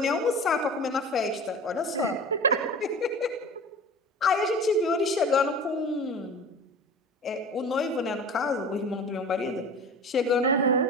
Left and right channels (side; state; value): both; normal; correlation 0.36